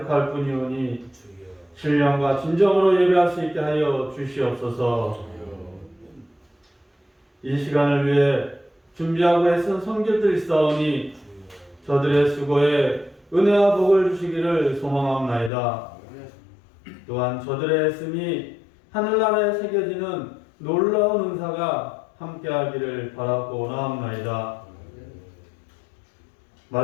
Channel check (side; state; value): right; drops out; at 15.5 s